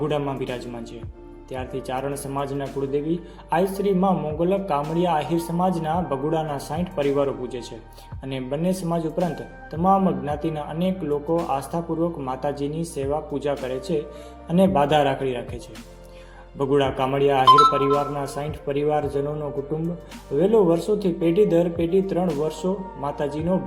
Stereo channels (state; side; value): identical; both; correlation 1.00